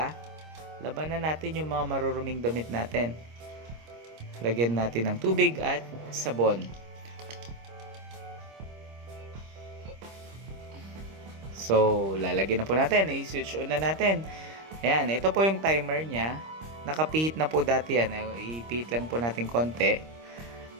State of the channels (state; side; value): late; left; 26 ms